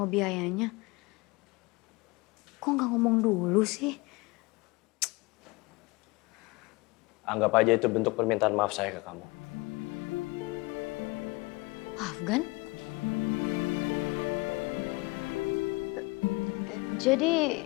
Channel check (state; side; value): quieter; right; 24.5 dB